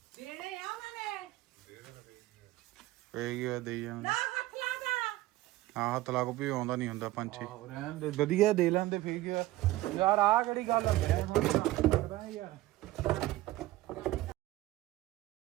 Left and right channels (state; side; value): quieter; left; 17.2 dB